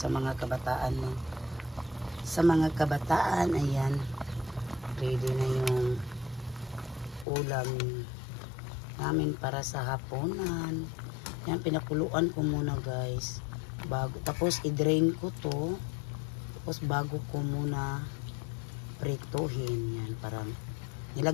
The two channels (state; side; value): drops out; right; at 7.2 s